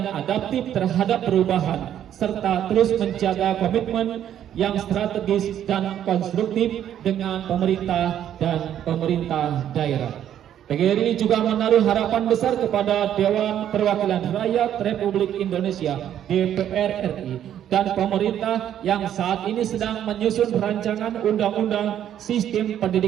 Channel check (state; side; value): quieter; left; 10.5 dB